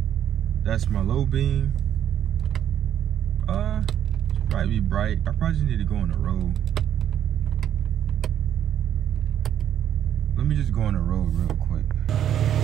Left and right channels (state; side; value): quieter; left; 10.2 dB